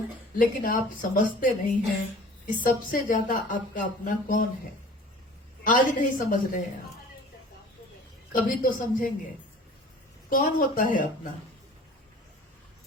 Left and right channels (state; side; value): normal; both; correlation 0.46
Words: लेकिन आप समझते नहीं हैं कि सबसे ज्यादा आपका अपना कौन है। आज नहीं समझ रहे हैं आप, कभी तो समझेंगे। कौन होता है अपना?